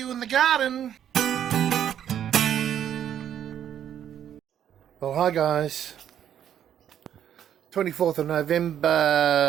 in the garden. Well, hi guys. 24th of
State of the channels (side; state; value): left; quieter; 9.9 dB